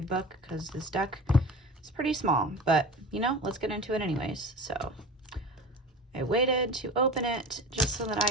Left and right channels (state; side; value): normal; both; correlation 0.34